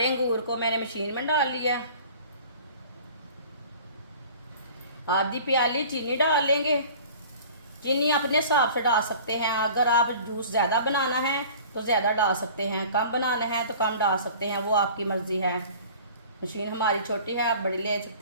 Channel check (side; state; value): both; inverted; correlation -0.45